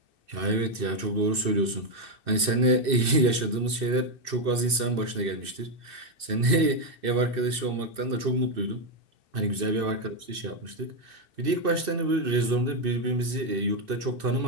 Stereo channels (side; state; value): left; late; 2.6 ms